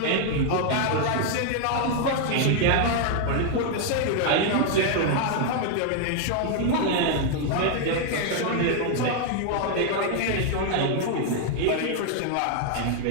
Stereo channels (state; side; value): different; both; correlation 0.00